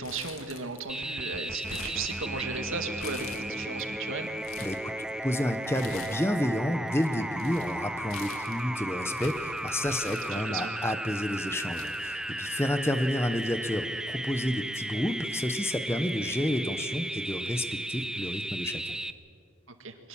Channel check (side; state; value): both; normal; correlation 0.78